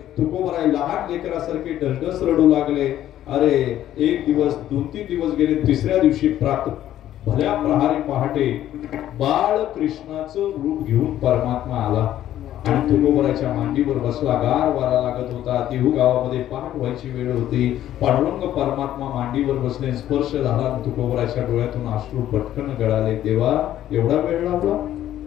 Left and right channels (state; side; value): quieter; right; 12.3 dB